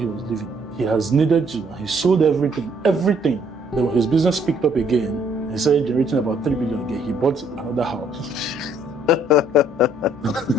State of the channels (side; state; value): left; noise; hum, 27 dB below the sound